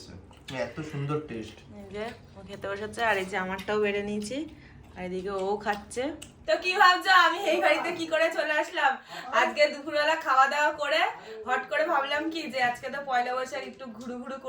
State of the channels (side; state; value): both; identical; correlation 1.00